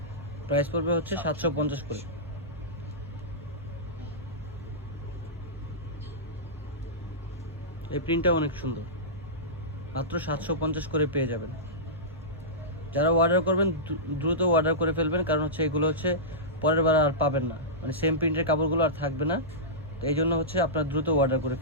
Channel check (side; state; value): both; normal; correlation -0.16